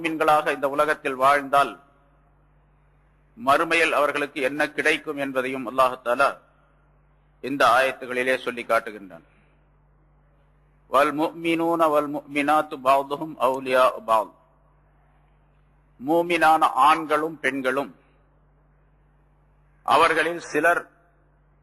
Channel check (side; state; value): both; identical; correlation 1.00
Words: இந்த உலகத்தில் வாழ்ந்தால் மறுமையில் அவர்களுக்கு என்ன கிடைக்கும் என்பதையும் அல்லாஹ் தஆலா இந்த ஆயத்துகளிலே சொல்லி காட்டுகின்றான். வல் முஃமினூன வல் முஃமினாத்து பஅதுஹும் அவுலியாஉ பஅத். மூமினான ஆண்களும் பெண்களும் அவர்களில்